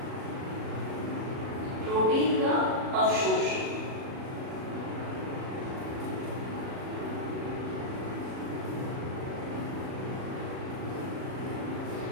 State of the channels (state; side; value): late; left; 37 ms